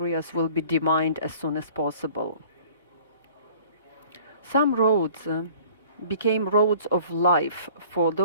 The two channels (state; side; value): inverted; both; correlation -0.51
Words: will be demined as soon as possible. Some roads became roads of life for